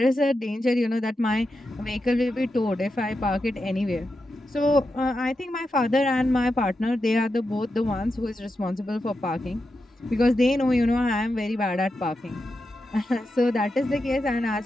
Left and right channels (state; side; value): normal; both; correlation 0.88